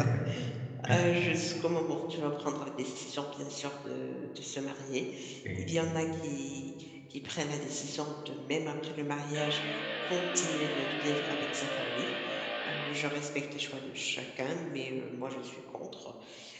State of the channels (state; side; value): identical; both; correlation 1.00